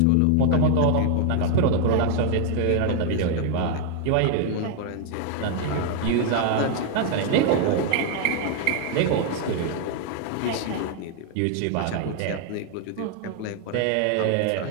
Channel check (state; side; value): different; both; correlation 0.00